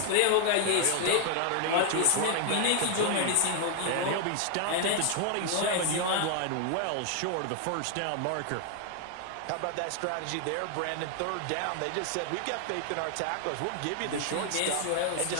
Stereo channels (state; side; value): different; both; correlation 0.00